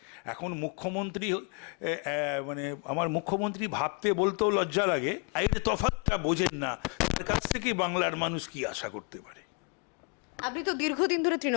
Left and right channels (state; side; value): quieter; right; 34.1 dB